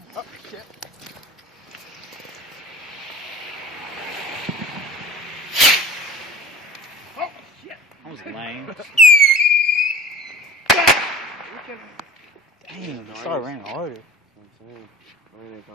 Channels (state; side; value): normal; both; correlation 0.40